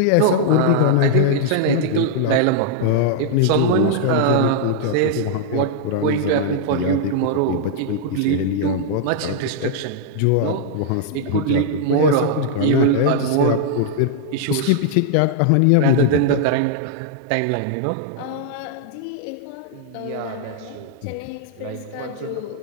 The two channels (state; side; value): different; both; correlation -0.01